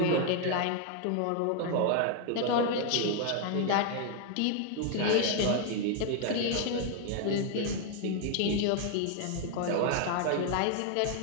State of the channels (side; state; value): both; different; correlation 0.00